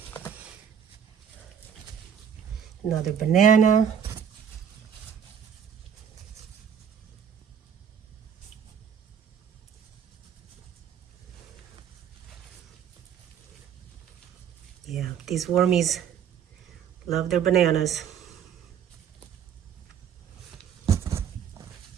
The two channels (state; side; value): quieter; left; 8.3 dB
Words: Another banana. Yeah, these wormies love their bananas.